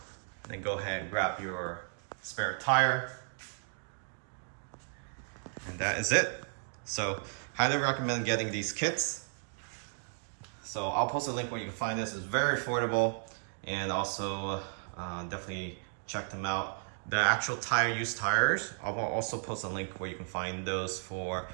Then go ahead and grab your spare tire. And that is it. So highly recommend getting these kits. So I'll post a link where you can find this. It's very affordable, and also definitely check them out. The actual used tires, I'll also post a link where you can find those for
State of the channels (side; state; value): left; silent; digital silence